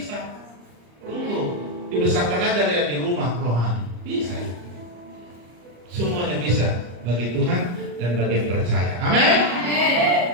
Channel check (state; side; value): late; left; 34 ms